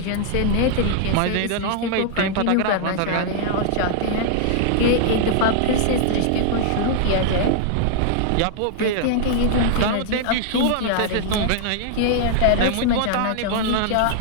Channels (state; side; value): different; both; correlation -0.01